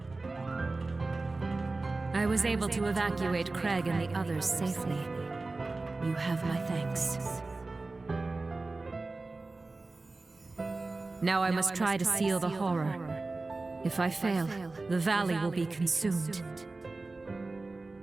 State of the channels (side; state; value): left; quieter; 3.4 dB